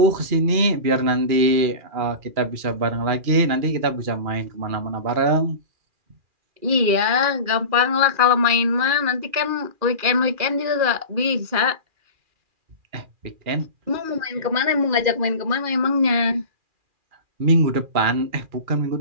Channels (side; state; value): left; late; 2.4 ms